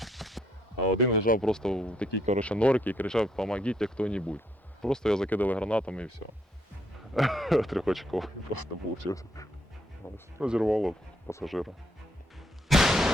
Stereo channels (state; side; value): normal; both; correlation 0.72